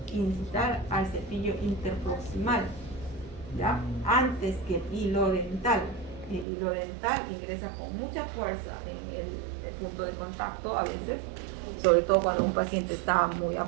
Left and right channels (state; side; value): drops out; left; at 6.5 s